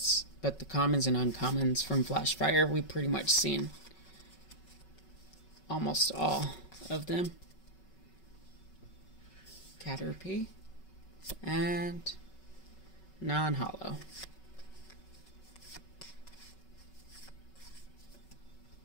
but the commons and uncommons from Flashfire, we've pretty much seen almost all of them. Caterpie and non-holo.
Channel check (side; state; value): right; late; 5.3 ms